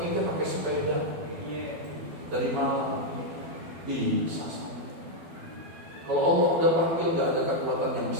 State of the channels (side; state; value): left; late; 12 ms